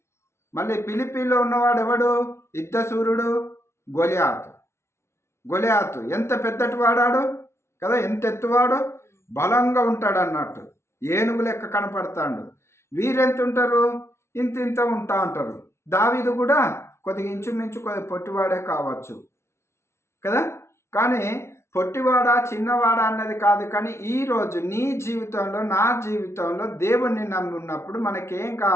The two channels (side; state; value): right; late; 0.13 ms